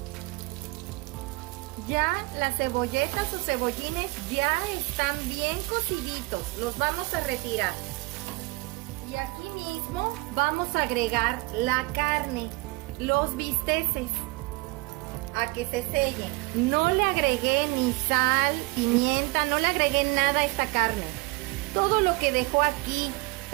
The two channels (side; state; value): left; quieter; 23.8 dB